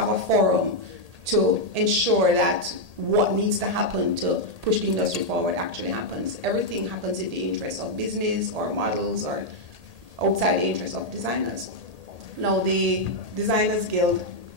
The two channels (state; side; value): late; left; 1.8 ms